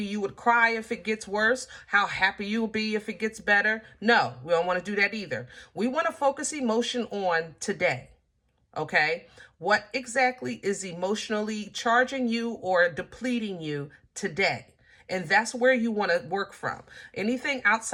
you would cry if it gets worse, how happy you'll be if it gets better. No, we don't want to do that either. We want to focus emotion on today. Okay? What exactly is emotionally charging you or depleting you today? And that's where you want to work from. Anything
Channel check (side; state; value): both; identical; correlation 1.00